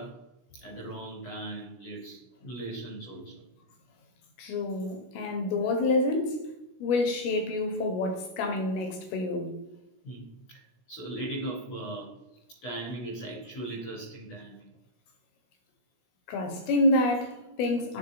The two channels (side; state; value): right; late; 16 ms